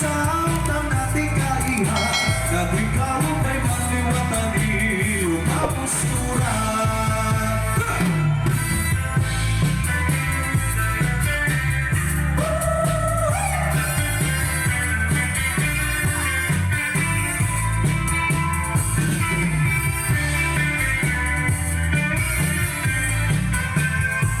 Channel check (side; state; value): both; identical; correlation 1.00